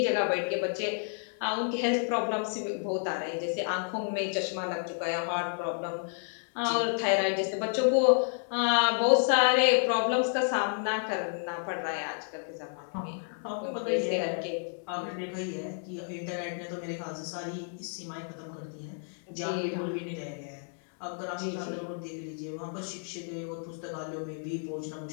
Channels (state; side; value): silent; right; 57 dB below the other